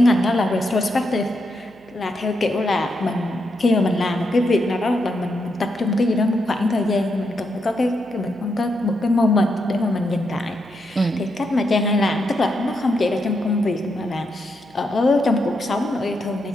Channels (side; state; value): right; noise; hum, 28 dB below the sound